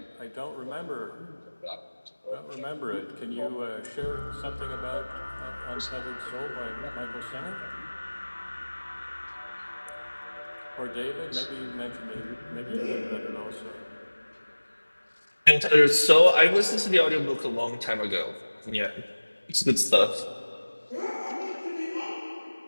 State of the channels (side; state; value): both; inverted; correlation -1.00